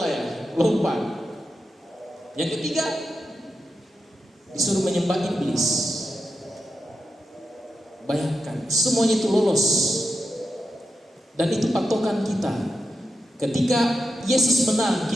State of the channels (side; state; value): both; normal; correlation 0.88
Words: ya, lompat. Yang ketiga disuruh menyembah iblis. Bayangkan, semuanya itu lolos. Dan itu patokan kita. Ketika Yesus menang,